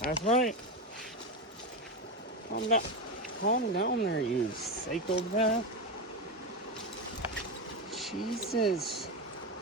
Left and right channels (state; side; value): normal; both; correlation 0.15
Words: right. Calm down. Calm down there, you psychopath. Jesus.